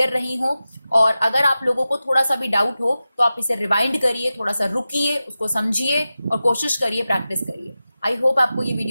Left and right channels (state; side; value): inverted; both; correlation -0.94